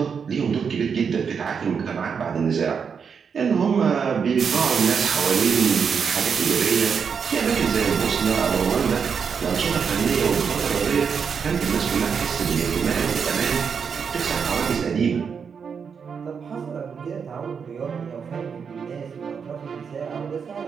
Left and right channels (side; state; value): left; quieter; 6.4 dB